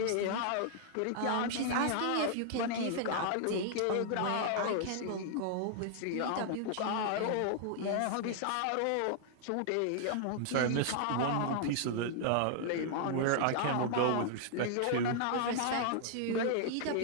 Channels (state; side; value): different; both; correlation -0.01